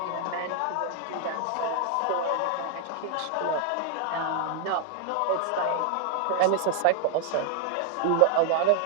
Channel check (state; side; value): different; both; correlation 0.00